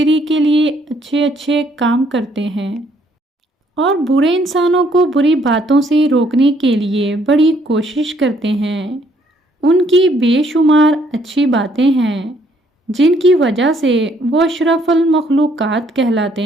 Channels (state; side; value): normal; both; correlation 0.67